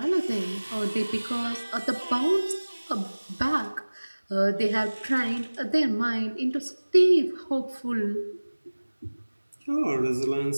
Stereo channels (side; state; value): both; inverted; correlation -1.00